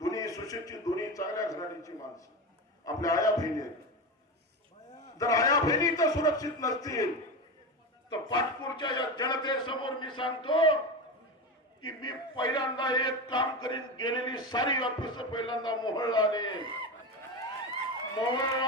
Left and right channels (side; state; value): both; normal; correlation 0.20